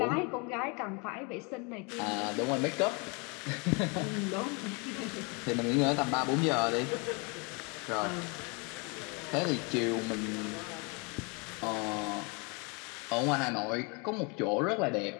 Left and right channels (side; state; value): right; quieter; 31.7 dB